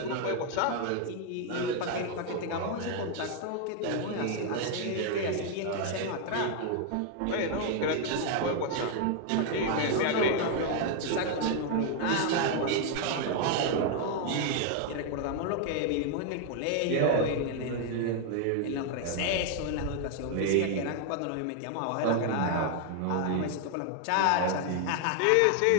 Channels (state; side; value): different; both; correlation 0.00